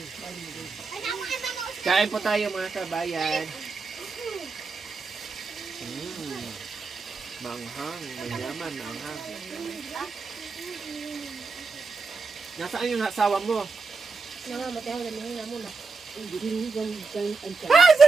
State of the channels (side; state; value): left; quieter; 4.4 dB